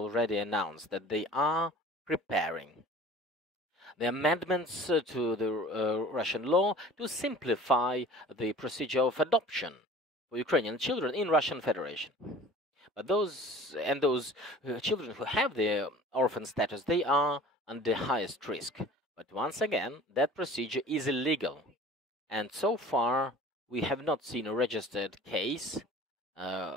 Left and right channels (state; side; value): normal; both; correlation 0.45